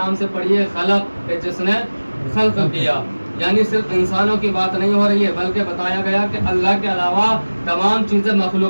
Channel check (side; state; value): both; inverted; correlation -1.00